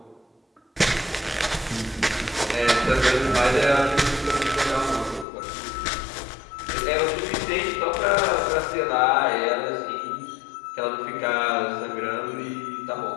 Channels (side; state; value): right; drops out; at 5.2 s